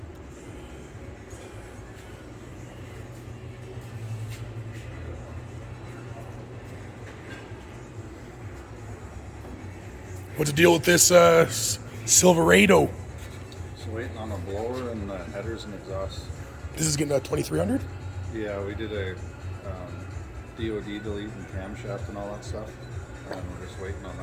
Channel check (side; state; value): both; identical; correlation 1.00